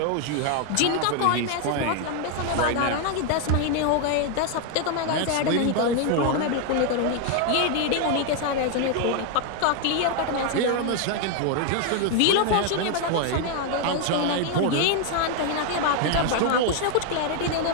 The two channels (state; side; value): different; both; correlation 0.01